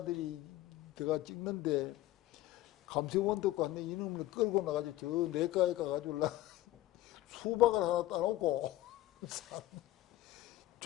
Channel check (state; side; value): quieter; right; 15.7 dB